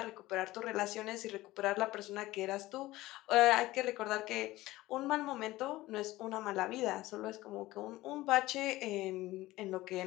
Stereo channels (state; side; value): quieter; right; 17.8 dB